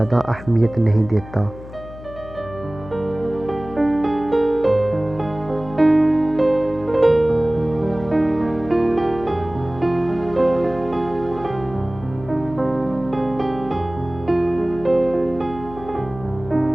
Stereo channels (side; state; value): left; noise; hum, 15 dB below the sound